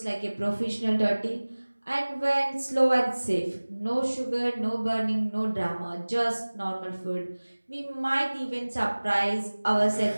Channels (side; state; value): both; inverted; correlation -1.00